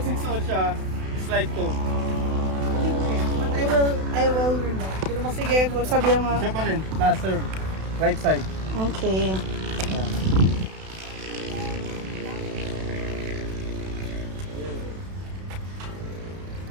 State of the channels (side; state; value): left; late; 32 ms